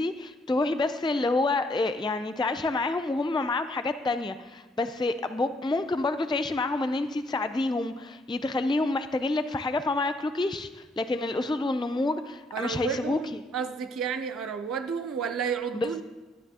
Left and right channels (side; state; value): both; normal; correlation 0.69